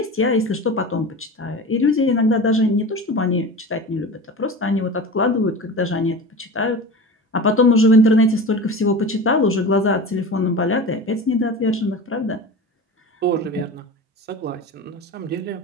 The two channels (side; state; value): both; normal; correlation 0.32